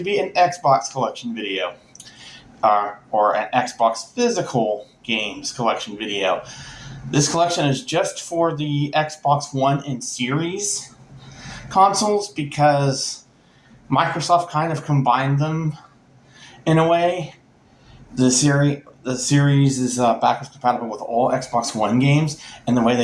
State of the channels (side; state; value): both; identical; correlation 1.00